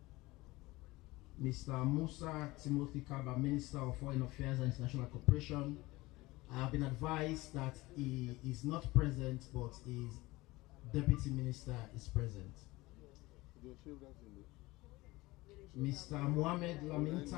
Mr. Musa Timothy Kaba, Minister of Foreign Affairs and International Cooperation. I have been advised that he is not present, but his Deputy Minister is present. Mr. Mohamed Lamin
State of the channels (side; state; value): right; quieter; 20.6 dB